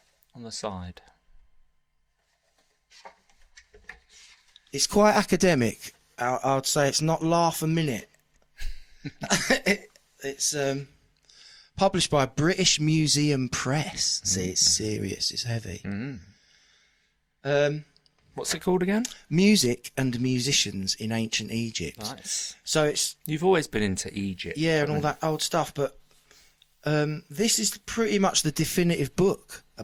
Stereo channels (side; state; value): both; identical; correlation 1.00